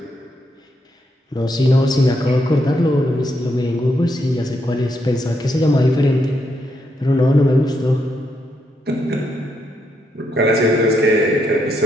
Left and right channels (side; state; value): both; normal; correlation 0.79